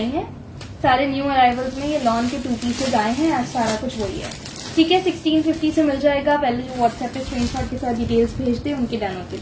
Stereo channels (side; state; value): both; identical; correlation 1.00